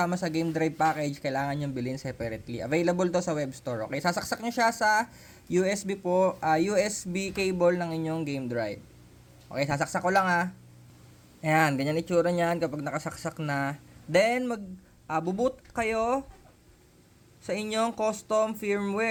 sa game drive package, kailangan nyo bilhin separately. Available to sa web store. Okay, sasaksak nyo siya sa USB cable ng inyong game drive. Okay, sasaksak ko lang Ayan, ganyan itsura niyan kapag nakasaksak na. Then mag-boot kayo sa inyong custom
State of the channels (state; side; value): identical; both; correlation 1.00